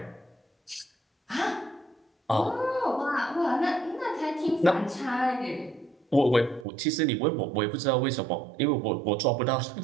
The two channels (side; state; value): left; drops out; at 6.7 s